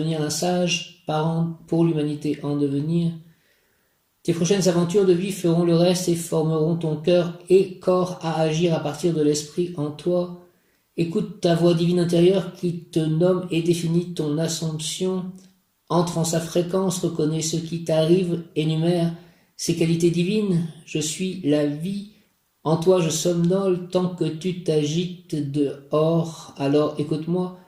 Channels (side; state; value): both; identical; correlation 1.00